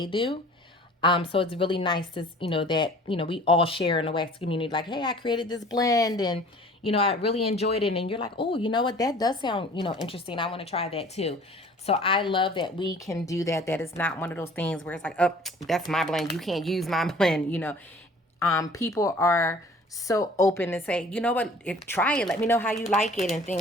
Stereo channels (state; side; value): normal; both; correlation 0.49